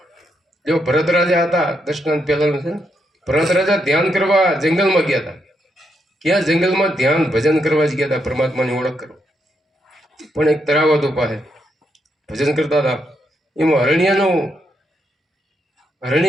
જો ભરત રાજા હતા, દશનાથ પહેલાનું છે ને, ભરત રાજા ધ્યાન કરવા જંગલમાં ગયા હતા. ક્યાં જંગલમાં ધ્યાન ભજન કરવા જ ગયા હતા, પરમાત્માની ઓળખ કરવા. પણ એક તળાવ હતું પાસે, ભજન કરતા હતા. એમાં હરણી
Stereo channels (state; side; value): normal; both; correlation 0.79